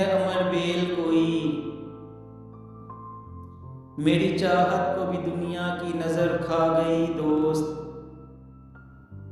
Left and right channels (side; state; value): both; identical; correlation 1.00